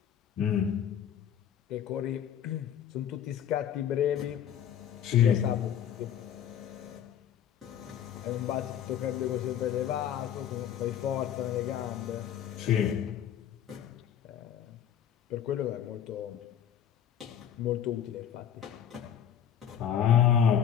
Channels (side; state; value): right; quieter; 9.3 dB